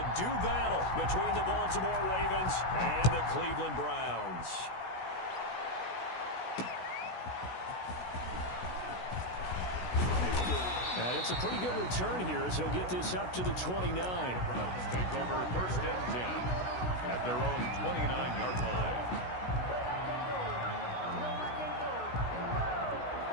do battle between the Baltimore Ravens and the Cleveland Browns. And it's a pretty good return here as he'll get this up to the 29. The Browns take over first and 10 at their own 29-yard line.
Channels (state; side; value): late; right; 16 ms